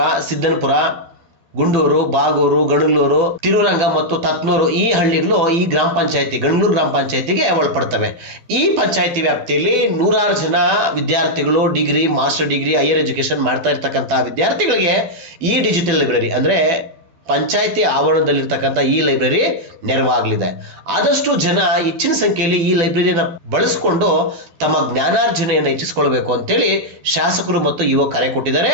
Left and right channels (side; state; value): left; late; 12 ms